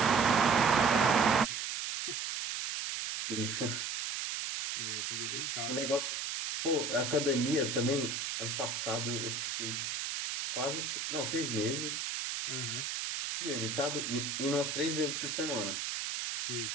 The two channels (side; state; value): right; noise; hiss, 3 dB below the sound